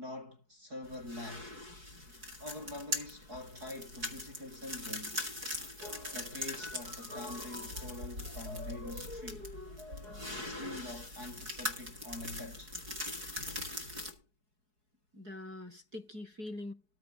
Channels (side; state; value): left; late; 4.7 ms